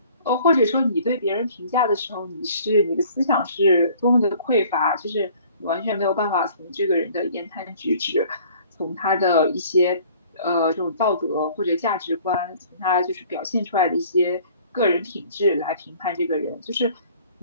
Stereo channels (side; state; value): both; inverted; correlation -0.53